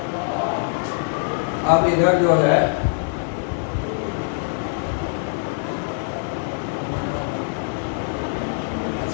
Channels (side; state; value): right; silent; digital silence